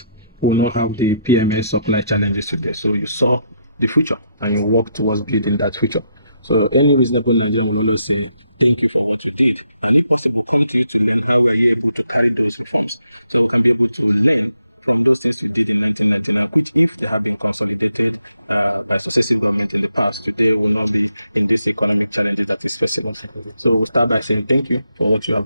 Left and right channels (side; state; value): both; inverted; correlation -0.78